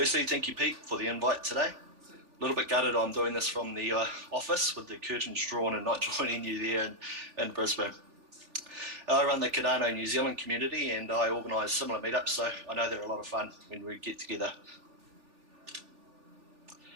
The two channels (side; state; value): left; late; 3.4 ms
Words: thank you, Pete, for the invite today. A little bit gutted I'm doing this from the office with the curtains drawn and not joining you there in Brisbane. I run the Cardano New Zealand community and I organise similar meetups, so I know they're a lot of fun when we get together.